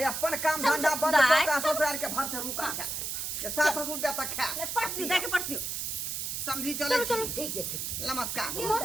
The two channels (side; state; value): right; noise; hiss, 3 dB below the sound